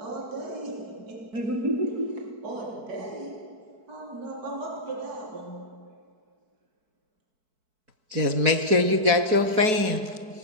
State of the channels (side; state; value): left; late; 4.6 ms